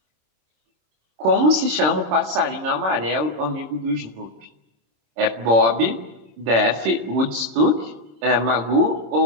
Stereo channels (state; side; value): late; left; 26 ms